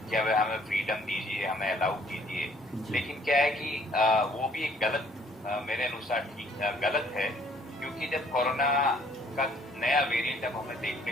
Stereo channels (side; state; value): both; normal; correlation 0.61